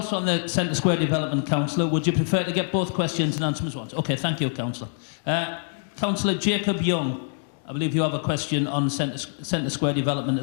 on the Centre Square Development, Councillor. Would you prefer to get both questions and answer them at once? Okay, thank you, Councillor. Councillor Jacob Young, I believe you have a question on Centre Square Development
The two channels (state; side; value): silent; right; digital silence